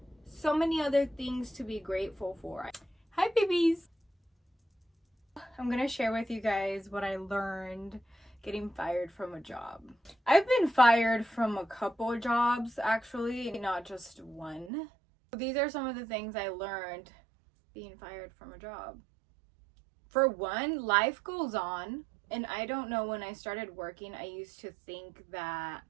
so many other things to be grateful for. Hi babies! I'm gonna share with you guys what I learned getting fired from a job. I've been fired from a couple jobs actually, not just one. These are some of the things I learned being fired from a job. For one, life goes on, and I don't know, when I started working, I used to think that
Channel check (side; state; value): left; drops out; at 14.7 s